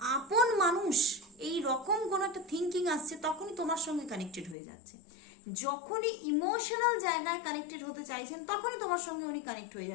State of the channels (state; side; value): drops out; right; at 4.5 s